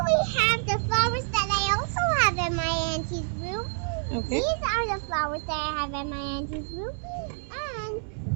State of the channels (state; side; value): silent; left; 60 dB below the other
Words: we have the flowers that I also have in my auntie's room. Okay. These are the flowers that I have in my auntie's room. And